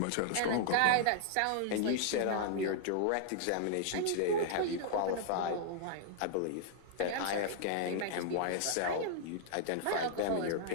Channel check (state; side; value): different; both; correlation -0.01